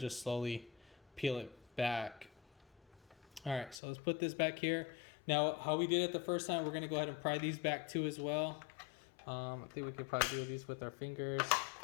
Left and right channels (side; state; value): right; drops out; at 3.8 s